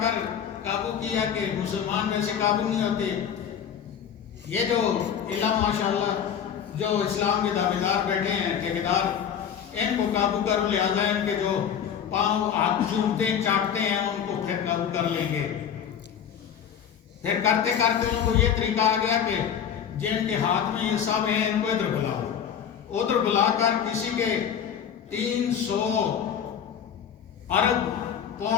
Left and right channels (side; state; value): right; quieter; 8.3 dB